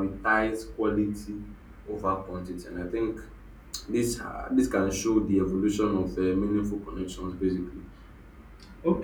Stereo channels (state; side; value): identical; both; correlation 1.00